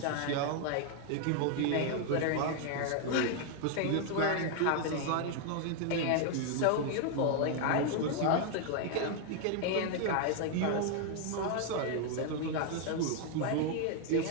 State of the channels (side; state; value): both; different; correlation 0.00